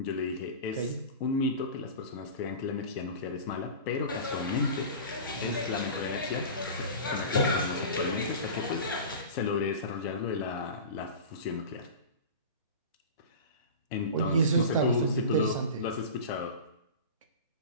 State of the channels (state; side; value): inverted; both; correlation -0.33